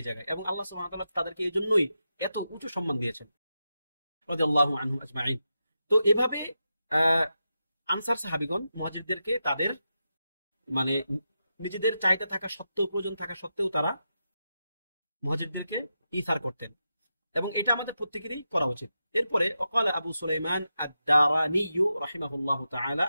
জায়গায়। এবং আল্লাহ সুবহানাহু ওয়া তাআলা তাদেরকে এই জন্যই এত উঁচু সম্মান দিয়েছেন রাদিয়াল্লাহু আনহুম আজমাইন। তো এভাবে আনসার সাহাবীগণ মুহাজিরদেরকে তাদের মানে নিজেদের চাহিদা থাকা সত্ত্বেও, প্রয়োজন থাকা সত্ত্বেও তারা মুহাজিরদেরকে ইসার করতেন, এবং এটা আমাদের প্রত্যেকেরই করা উচিত। এরপরে ওয়াকাল আবু সুলাইমান আদ-দারানি রাহিমাহুল্লাহু তাআলা,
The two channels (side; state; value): both; inverted; correlation -0.88